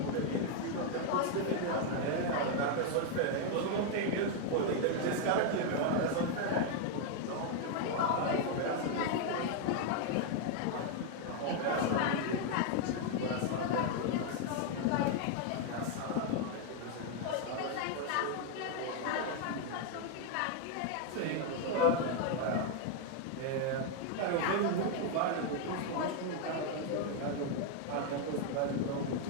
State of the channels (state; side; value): different; both; correlation 0.00